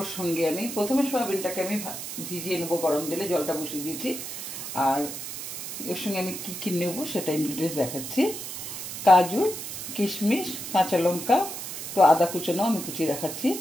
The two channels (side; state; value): right; noise; hiss, 7 dB below the sound